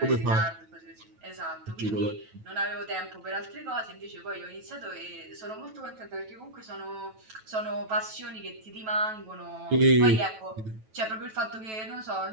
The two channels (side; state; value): left; late; 9.2 ms